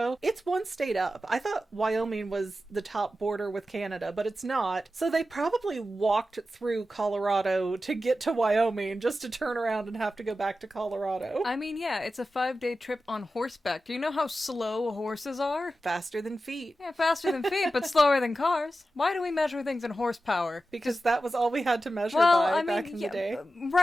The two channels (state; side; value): normal; both; correlation 0.92